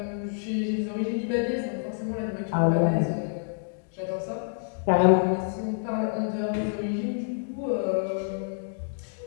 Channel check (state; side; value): silent; right; digital silence